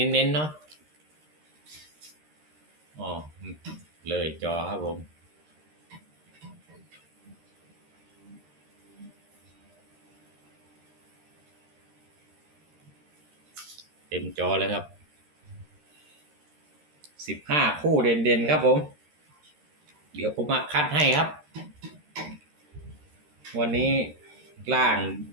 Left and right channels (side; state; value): left; late; 13 ms